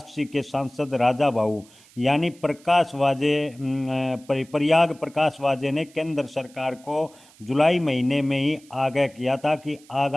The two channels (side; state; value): right; noise; hiss, 26 dB below the sound